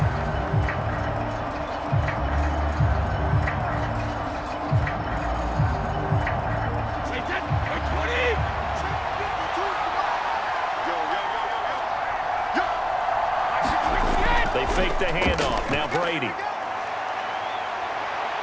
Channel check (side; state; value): both; identical; correlation 1.00